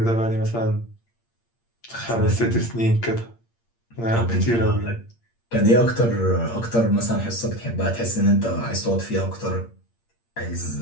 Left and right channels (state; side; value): late; right; 8.6 ms